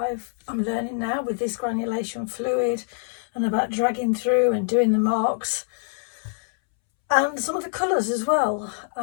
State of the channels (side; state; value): right; silent; 62 dB below the other